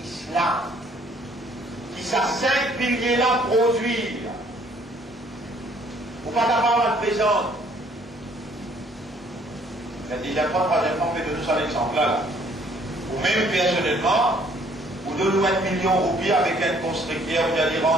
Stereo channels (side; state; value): both; normal; correlation 0.61